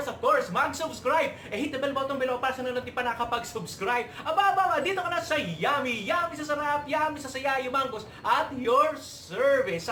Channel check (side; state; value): both; identical; correlation 1.00